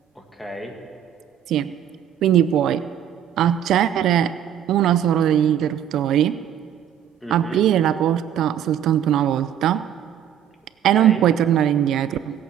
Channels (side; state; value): left; quieter; 10.0 dB